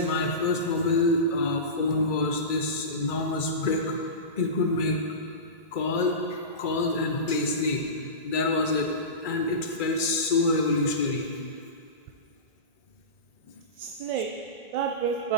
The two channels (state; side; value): late; right; 2.3 ms